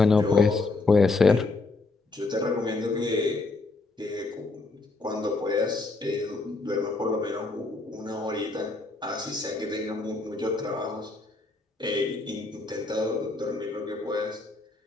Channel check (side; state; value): right; quieter; 3.5 dB